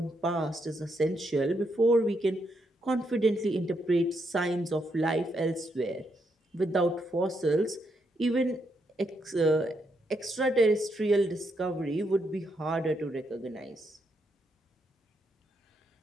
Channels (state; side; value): normal; both; correlation 0.78